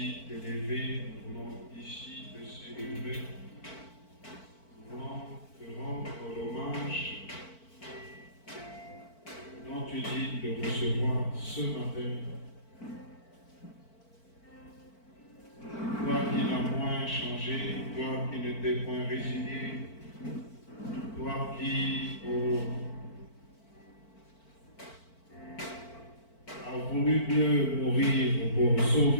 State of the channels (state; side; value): late; right; 4.5 ms